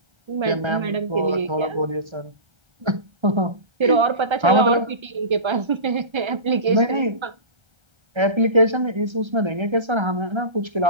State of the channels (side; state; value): left; late; 1.3 ms